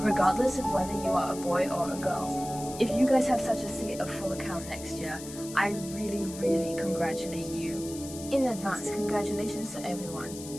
of whether you are a boy or a girl. If you guys have such a state of full account next year, I really congratulate you. In advance, congratulations to everyone.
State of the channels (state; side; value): noise; left; hiss, 13 dB below the sound